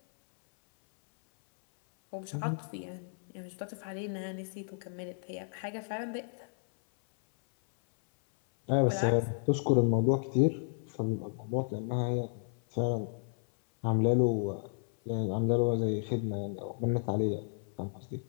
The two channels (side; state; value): right; silent; 56 dB below the other